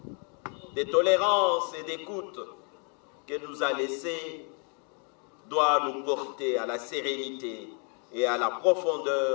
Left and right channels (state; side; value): quieter; right; 39.1 dB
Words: de tolérance et d'écoute qu'elle nous a laissé doit nous porter à la sérénité et à la